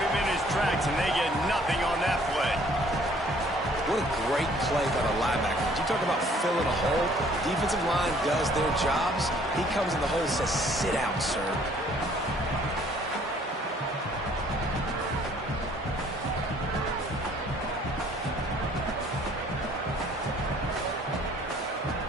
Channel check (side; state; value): both; normal; correlation 0.59